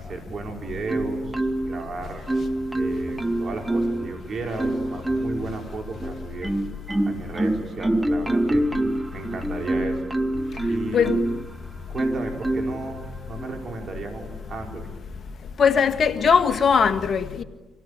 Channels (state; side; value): normal; both; correlation 0.85